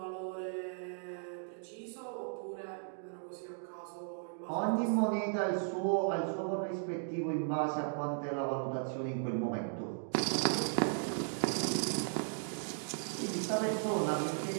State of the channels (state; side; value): silent; left; digital silence